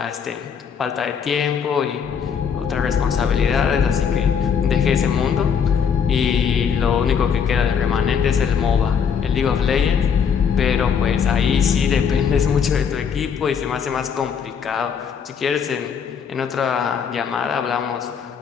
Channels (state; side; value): quieter; right; 7.0 dB